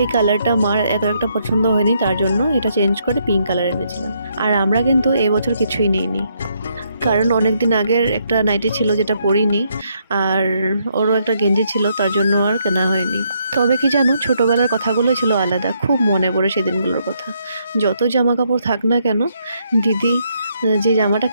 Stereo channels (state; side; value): inverted; both; correlation -0.74